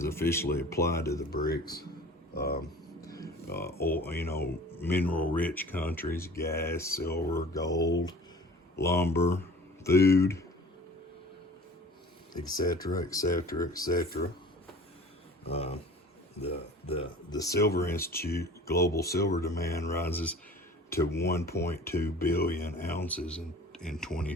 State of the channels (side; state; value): both; normal; correlation 0.44